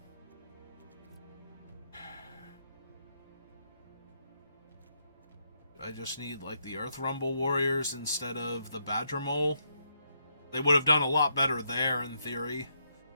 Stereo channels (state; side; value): inverted; both; correlation -0.77